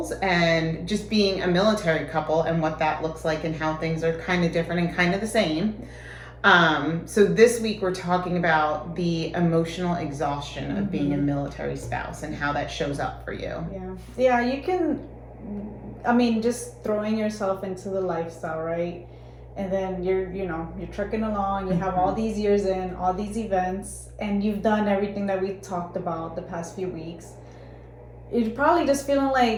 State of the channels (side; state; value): both; identical; correlation 1.00